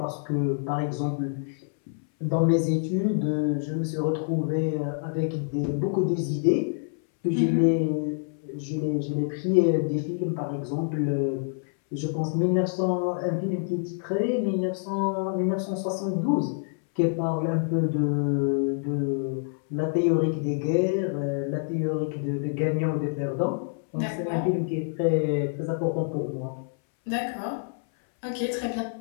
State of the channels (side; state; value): right; silent; 60 dB below the other